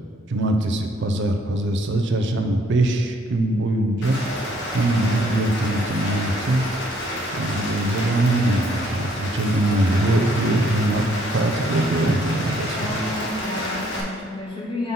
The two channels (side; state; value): both; normal; correlation 0.66